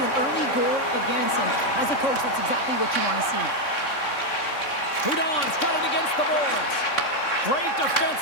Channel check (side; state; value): right; late; 3.6 ms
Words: an early goal against, and as a coach, that's exactly what you want to see. Hudon's got it against the boards. Great